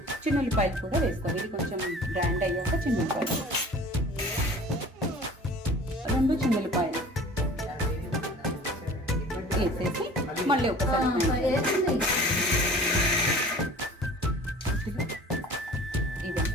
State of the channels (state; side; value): normal; both; correlation 0.45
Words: చిన్నుల్లిపాయలు కూడా వేసుకోవాలి. ఇది కొంచెం బ్రాండ్ అయ్యాక చిన్నుల్లిపాయలు 2 చిన్నుల్లిపాయలు వేసేసి మళ్ళీ ఒకసారి